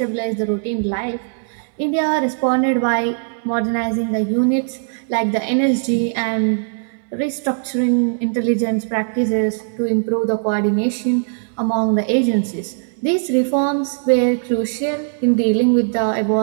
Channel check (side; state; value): left; silent; digital silence